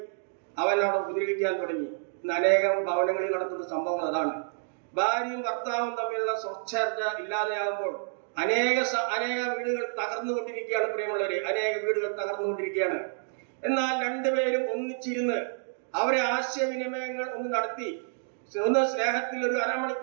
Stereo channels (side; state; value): left; silent; digital silence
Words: അവൻ അവിടെ ഉപദ്രവിക്കാൻ തുടങ്ങി. ഇന്ന് അനേകം ഭവനങ്ങളിൽ നടത്തുന്ന സംഭവം അതാണ്. ഭാര്യയും ഭർത്താവും തമ്മിലുള്ള സ്വച്ഛർച്ച ഇല്ലാതെയാകുമ്പോൾ അനേക വീടുകൾ തകർന്നുകൊണ്ടിരിക്കുകയാണ്. പ്രിയമുള്ളവരെ, അനേക വീടുകൾ തകർന്നുകൊണ്ടിരിക്കുകയാണ്. എന്നാൽ രണ്ടുപേരും ഒന്നിച്ചിരുന്ന് അവരെ ആശയവിനിമയങ്ങൾ ഒന്ന് നടത്തി ഒന്ന് സ്നേഹത്തിൽ ഒരു